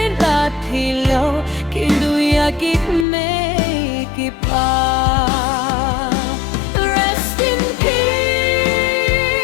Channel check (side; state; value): right; drops out; at 3.1 s